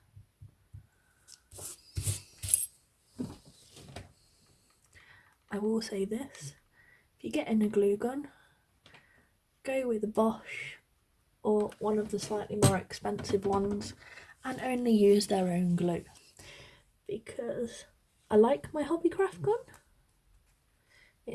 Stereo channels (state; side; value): identical; both; correlation 1.00